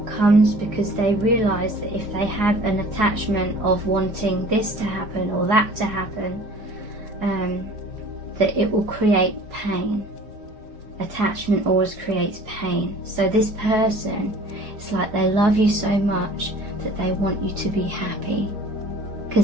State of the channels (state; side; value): late; left; 4.7 ms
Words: because they realize that if they have an attachment of wanting this to happen or that to happen, that it will create pain. Attachment always creates pain. So this person, it's like they love you so much that they want you to be happy,